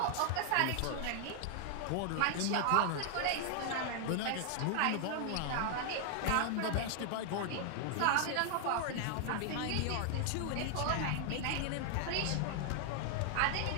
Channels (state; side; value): different; both; correlation 0.00